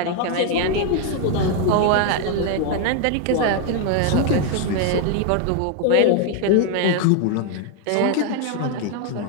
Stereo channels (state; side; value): different; both; correlation 0.01